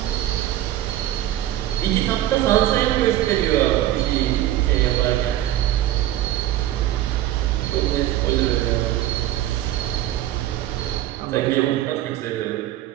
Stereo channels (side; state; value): left; quieter; 13.6 dB